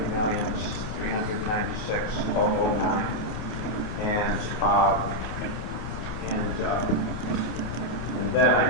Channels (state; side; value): late; right; 27 ms